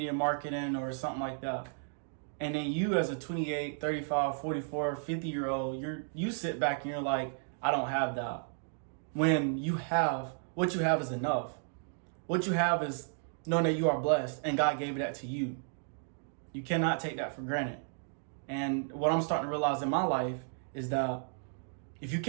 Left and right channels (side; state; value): left; silent; digital silence